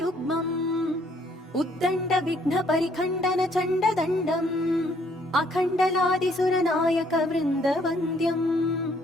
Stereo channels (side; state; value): both; normal; correlation 0.66